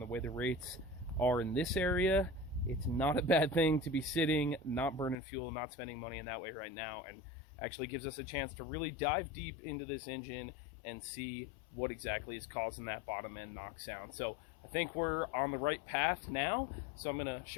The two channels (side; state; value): right; drops out; at 5.2 s